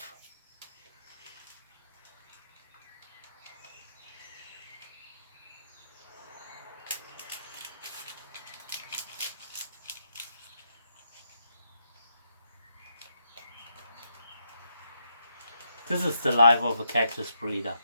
This is the life of a cactus breeder.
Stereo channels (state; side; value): inverted; both; correlation -0.80